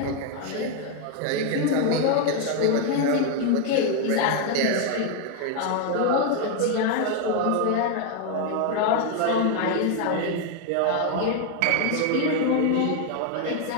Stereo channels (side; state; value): both; different; correlation 0.01